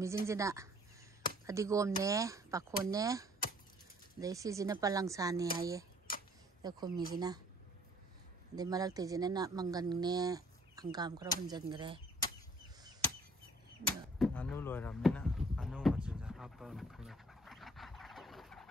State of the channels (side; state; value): both; normal; correlation 0.57